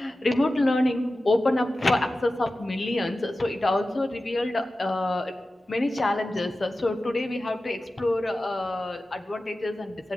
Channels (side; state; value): both; normal; correlation 0.95